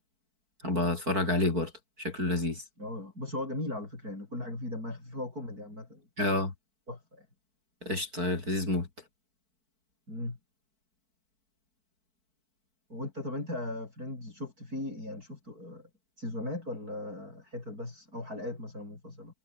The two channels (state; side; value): late; left; 4.5 ms